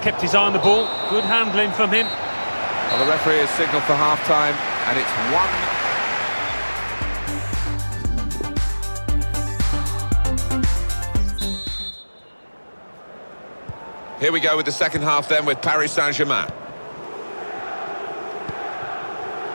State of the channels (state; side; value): inverted; both; correlation -1.00